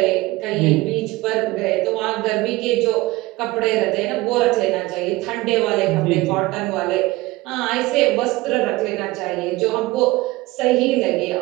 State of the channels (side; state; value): left; quieter; 19.9 dB